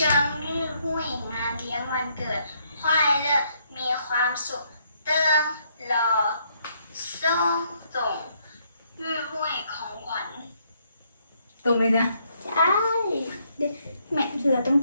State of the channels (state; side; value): inverted; both; correlation -0.72